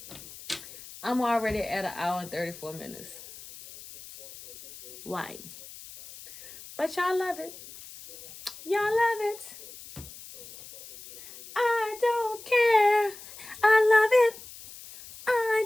I'm already at 1 hour and 34 minutes. Why? But y'all love it. Y'all love it. I don't care. I love it. I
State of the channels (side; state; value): left; noise; hiss, 16 dB below the sound